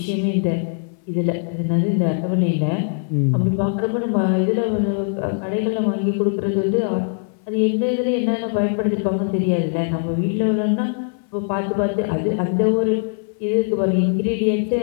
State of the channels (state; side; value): silent; right; 65 dB below the other